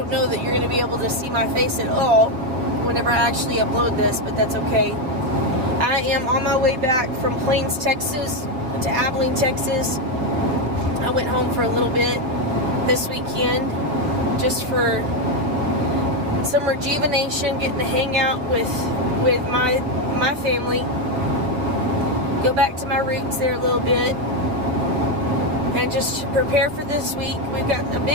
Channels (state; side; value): late; left; 6.8 ms